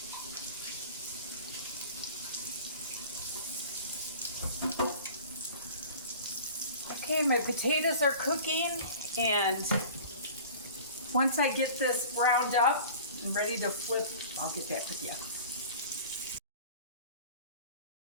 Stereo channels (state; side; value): inverted; both; correlation -0.41